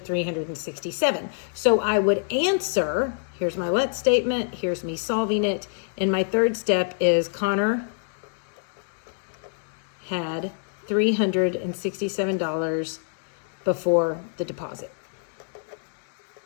So I would answer, here's my let statement, here's me solving it. And my third step is Connor had $367 before the deposit.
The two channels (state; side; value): silent; right; 61 dB below the other